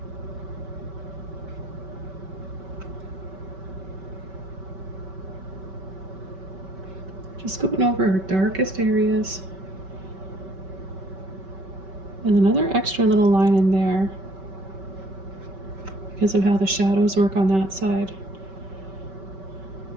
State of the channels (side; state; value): left; late; 5.2 ms